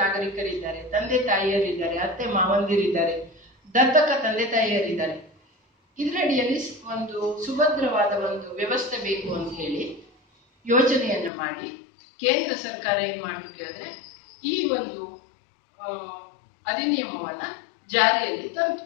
ತಂದೆ ತಾಯಿಯರಿದ್ದಾರೆ, ಅತ್ತೆ ಮಾವಂದಿರಿದ್ದಾರೆ, ದತ್ತಕ ತಂದೆ ತಾಯಿಯರಿದ್ದಾರೆ. ಇದರಡಿಯಲ್ಲಿ ಒಂದು ಸುಭದ್ರವಾದ ಒಂದು ವ್ಯವಸ್ಥೆ ಬೇಕು ಅಂತ ಹೇಳಿ ಯೋಜನೆಯನ್ನು ಮಾಡಿ ಕೇಂದ್ರ ಸರ್ಕಾರ ಏನ್ ಮಾಡ್ತು ಕೇಳಿದ್ರೆ, ಈ ಒಂದು ಅಧಿನಿಯಮವನ್ನ ಜಾರಿಯಲ್ಲಿ ತಂತು.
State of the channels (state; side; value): drops out; right; at 11.3 s